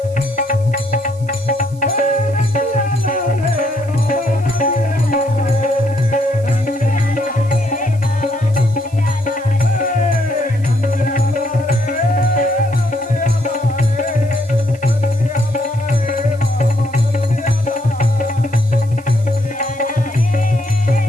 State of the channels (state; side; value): noise; right; hiss, 25 dB below the sound